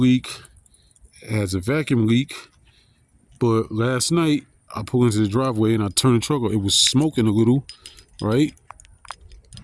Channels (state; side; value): identical; both; correlation 1.00